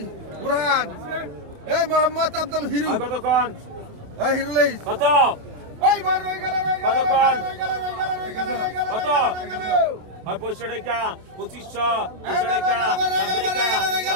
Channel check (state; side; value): late; left; 28 ms